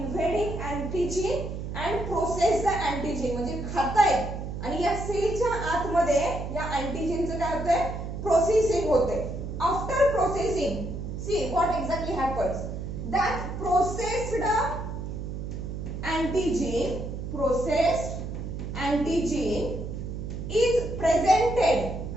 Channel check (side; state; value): right; noise; hum, 6 dB below the sound